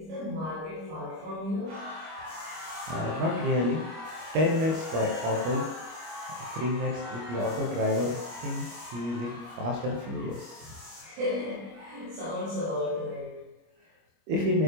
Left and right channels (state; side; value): late; left; 25 ms